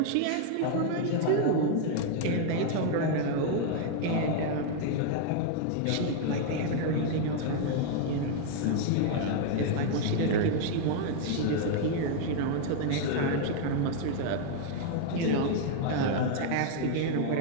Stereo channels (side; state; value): both; different; correlation 0.00